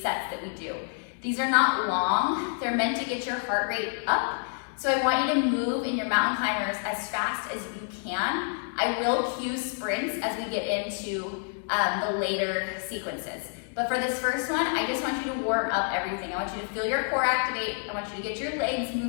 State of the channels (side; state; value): right; silent; 55 dB below the other